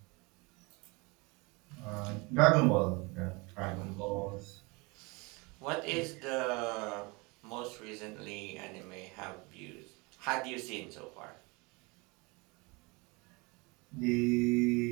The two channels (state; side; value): quieter; left; 27.2 dB